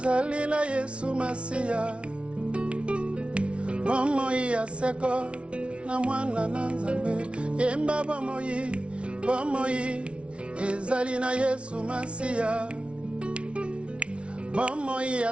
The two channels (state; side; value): late; left; 0.060 ms